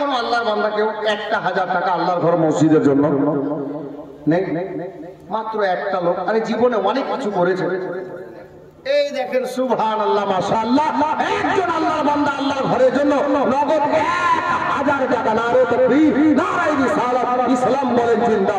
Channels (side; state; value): both; identical; correlation 1.00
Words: আল্লাহর বান্দা কেউ 1000 টাকা আল্লাহর ঘর মসজিদের জন্য নেই? মাত্র একটা লোক, আরে জীবনে অনেক কিছু করেছে। এই দেখেন সুবহানাল্লাহ, মাশাআল্লাহ, একজন আল্লাহর বান্দা আল্লাহর ঘরের জন্য নগদ 1000 টাকা। নারে তাকবীর, নারে রিসালাত, ইসলাম বলেন